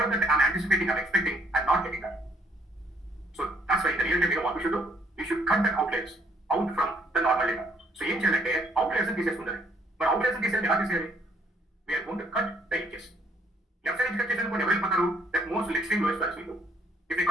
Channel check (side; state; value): both; normal; correlation 0.66